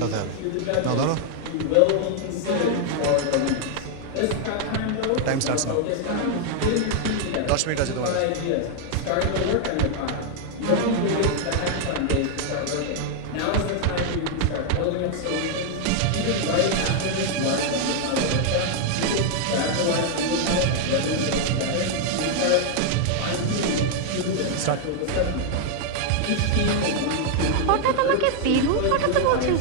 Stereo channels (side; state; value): both; different; correlation 0.00